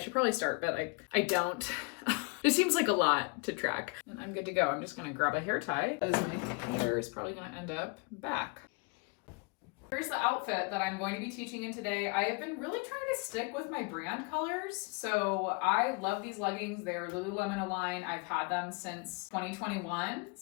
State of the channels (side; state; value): right; quieter; 31.3 dB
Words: probably start, but I don't. It seems like a lot to track. And I'm good to go. I'm just gonna grab a hair tie because my hair is probably gonna end up back. Here's the outfit that I'm going to be teaching in today. I have been really trying to stick with my brand colors. So I love these leggings. They're Lululemon Align. I've had them since 2021.